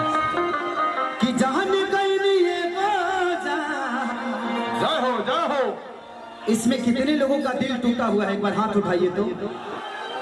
कि जान गई ये बाजा जय हो इसमें कितने लोगों का दिल टूटा हुआ है एक बार हाथ उठाइए तो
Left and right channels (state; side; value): identical; both; correlation 1.00